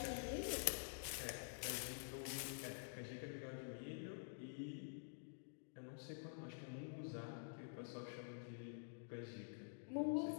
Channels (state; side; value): silent; right; digital silence